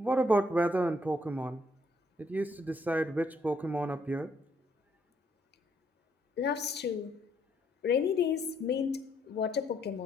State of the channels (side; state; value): both; normal; correlation 0.70